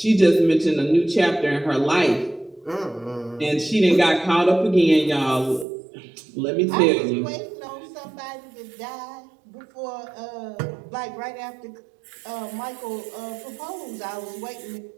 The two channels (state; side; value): drops out; left; at 5.7 s